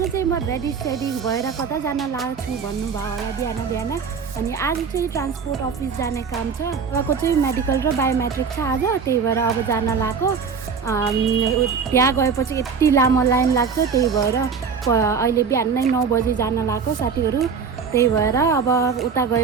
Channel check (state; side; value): quieter; left; 5.9 dB